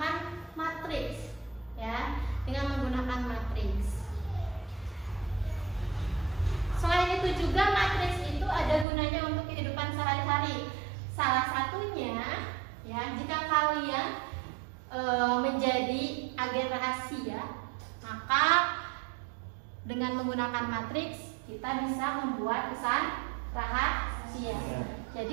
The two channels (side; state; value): left; drops out; at 8.8 s